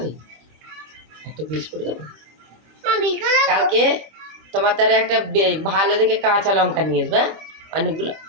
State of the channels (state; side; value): late; left; 25 ms